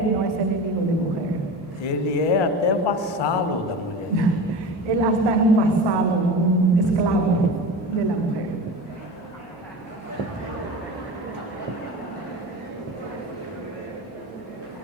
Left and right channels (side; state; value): both; normal; correlation 0.30